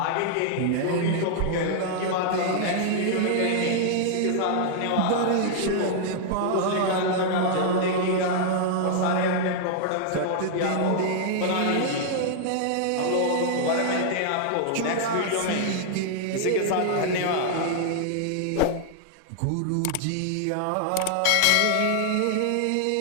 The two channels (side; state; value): both; different; correlation 0.00